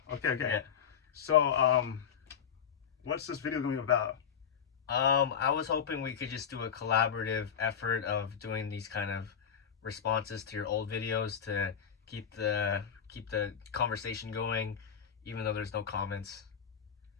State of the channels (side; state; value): right; quieter; 7.8 dB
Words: Okay. Yeah. So, what's this video gonna be about? I was hoping we could just do a collaborative effort of doing these kind of responses to your old videos to keep the conversation going, even though there's no comments.